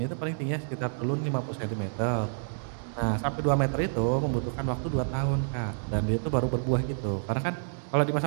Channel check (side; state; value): left; silent; digital silence